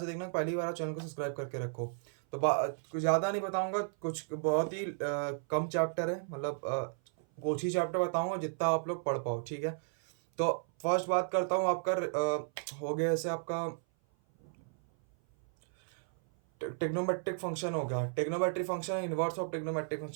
देखना, पहली बार आप चैनल को सब्सक्राइब करके रखो. तो कुछ ज़्यादा नहीं बताऊँगा, कुछ बहुत ही कम चैप्टर है, मतलब कुछ ही चैप्टर बताऊँगा जितना आप लोग पढ़ पाओ, ठीक है. तो फर्स्ट बात करता हूँ आपका हो गया ऐसे आपका टेक्नोमेट्रिक फंक्शन हो गया, trigonometric function, inverse of trigonometric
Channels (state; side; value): silent; left; 55 dB below the other